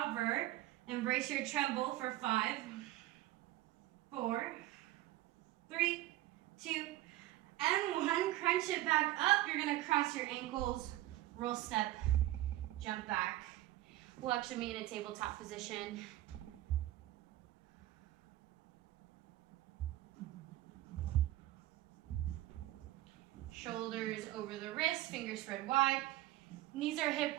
embrace your tremble for 5, 4, 3, 2, and 1. Crunch it back up. You're going to cross your ankles, roll step, jump back. We'll actually meet in a tabletop position. Shoulders over the wrists, fingers spread wide. Knees are hip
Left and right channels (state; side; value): quieter; left; 15.8 dB